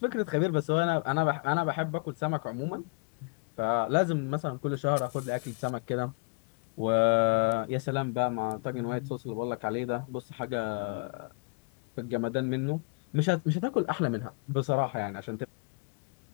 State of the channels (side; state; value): right; quieter; 31.9 dB